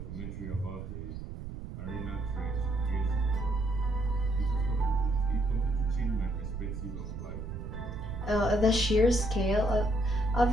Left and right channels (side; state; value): right; noise; rumble, 8 dB below the sound